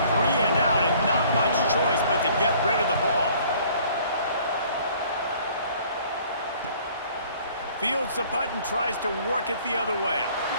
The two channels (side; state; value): both; inverted; correlation -0.56